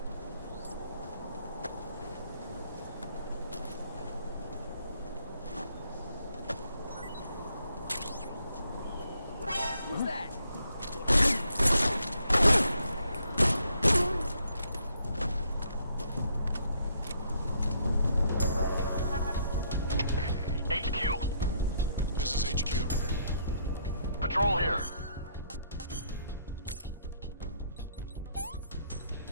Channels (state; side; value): inverted; both; correlation -0.71